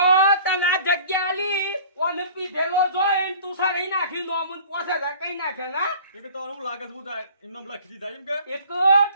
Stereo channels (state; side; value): inverted; both; correlation -0.47